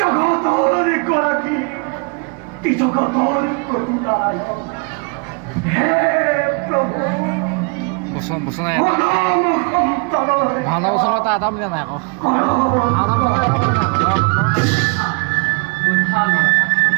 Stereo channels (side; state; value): left; quieter; 34.5 dB